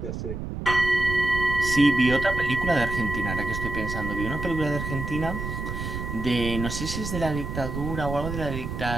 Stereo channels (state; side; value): noise; right; rumble, 5 dB below the sound